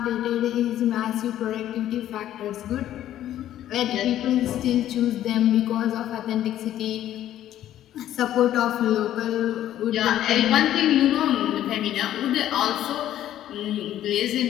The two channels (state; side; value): quieter; right; 12.2 dB